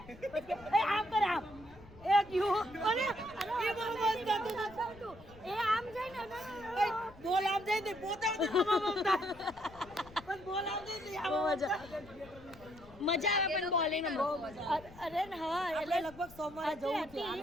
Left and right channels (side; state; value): left; noise; rumble, 21 dB below the sound